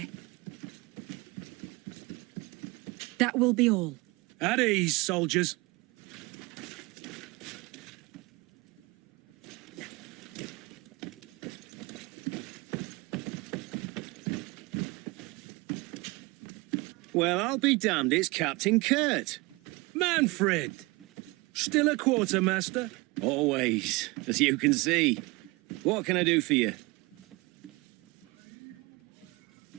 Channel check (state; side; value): quieter; left; 24.4 dB